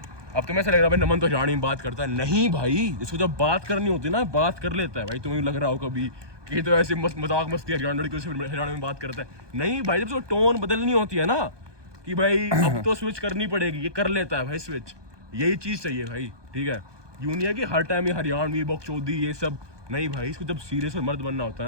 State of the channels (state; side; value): late; left; 1.2 ms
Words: अब तुम्हें ऐसा लग रहा है भाई नमन तो हरियाणवी में बात करता है, नहीं भाई, जिसको जब बात करनी होती है ना, बात कर लेता है भाई। तुम्हें लग रहा हो कभी कि तो ऐसे मजाक मस्ती हरियाणवी में बात करता है, नहीं भाई, जब उसको टोन बदलनी होती है ना, कि भाई अब तो स्विच करनी पड़ेगी, ये कर लेता है भाई स्विच। यही चीज़ चाहिए भाई, ठीक है। यूं नहीं है कि हर टाइम ये हरियाणवी बकचोदी ये सब, नहीं भाई, इसको जब सीरियस और मर्द बनना होता